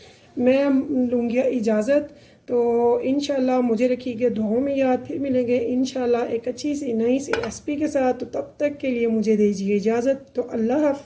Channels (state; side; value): identical; both; correlation 1.00